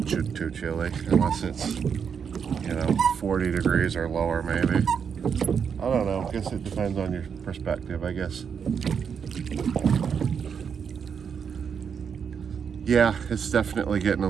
too chilly, unless it's, 40 degrees or lower maybe. I don't know. I guess it depends on your perspective, I guess. Yeah, it's definitely getting a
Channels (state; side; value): quieter; left; 6.9 dB